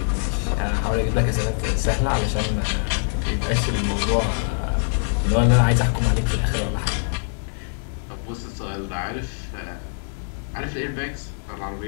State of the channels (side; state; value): right; silent; 63 dB below the other